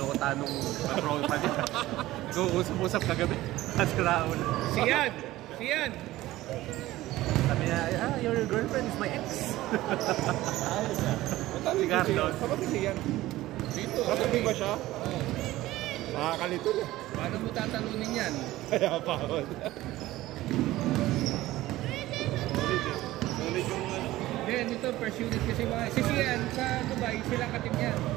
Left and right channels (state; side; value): quieter; left; 16.6 dB